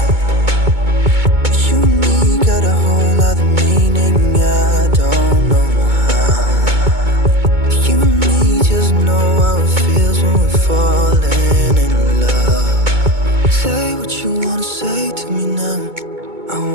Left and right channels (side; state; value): left; late; 2.2 ms